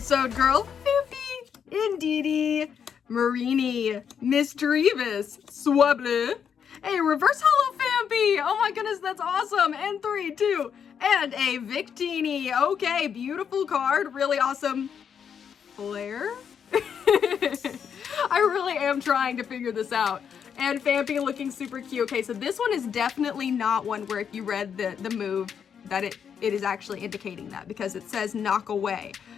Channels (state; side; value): quieter; right; 7.6 dB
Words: Girl. Fifi. Indeedy. Marini. Misdreavus. Swabble. A reverse holo Fampy. Oh my goodness, that's awesome. And 3, 2, and a Victini. Okay, beautiful card. Really awesome. Flare? I really am trying to figure this out. And Fampy looking super cute. Okay, so this one is definitely not one where if you read the move that it is actually indicating that, because it says knock away.